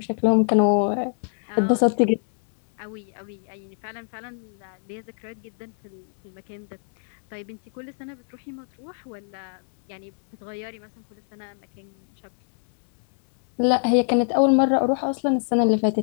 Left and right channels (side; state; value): right; silent; 61 dB below the other